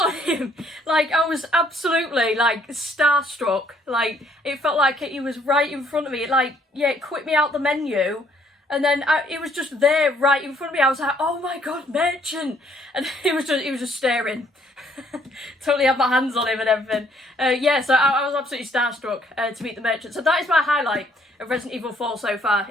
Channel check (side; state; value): both; normal; correlation 0.65